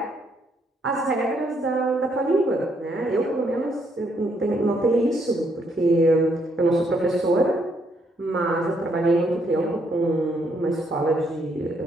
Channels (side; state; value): both; normal; correlation 0.73